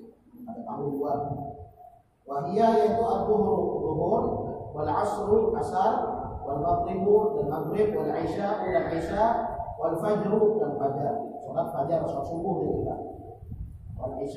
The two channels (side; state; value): both; identical; correlation 1.00